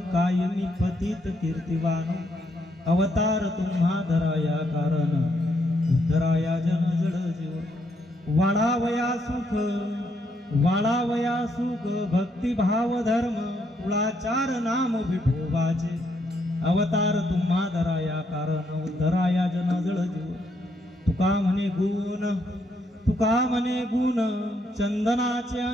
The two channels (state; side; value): normal; both; correlation 0.75